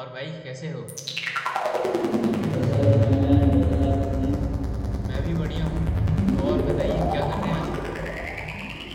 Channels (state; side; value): identical; both; correlation 1.00